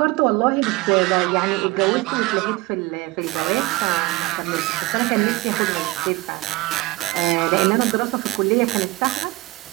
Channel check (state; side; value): quieter; left; 21.1 dB